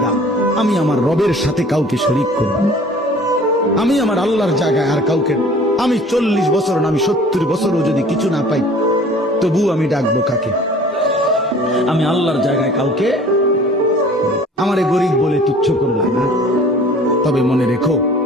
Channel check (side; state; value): both; normal; correlation 0.49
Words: আমি আমার রবের সাথে কাউকে শরীক করব না। আমি আমার আল্লাহর জায়গায় আর কাউকে, আমি 40 বছর না আমি 70 বছরও যদি কিছু না পাই তবু আমি ডাকবো কাকে? আমি আল্লাহর জায়গায় কাউকে। আমারে গরিব বলে তুচ্ছ করলা না, তবে মনে রেখো